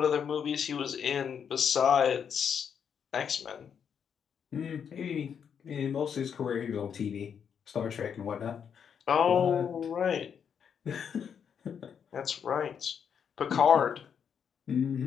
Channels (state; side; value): quieter; right; 7.5 dB